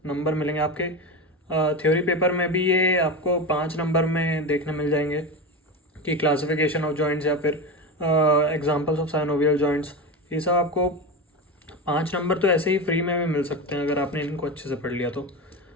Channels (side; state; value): both; normal; correlation 0.20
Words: नंबर मिलेंगे। आपके थ्योरी पेपर में भी ये आपको 5 नंबर में देखने मिल जाएंगे कि क्लासिफिकेशन ऑफ जॉइंट्स या फिर एग्जाम्पल्स ऑफ साइनोवियल जॉइंट्स। ये सब आपको 5 नंबर तो ऐसे ही फ्री में भी मिल सकते हैं अगर आपने इनको अच्छे से पढ़ लिया तो।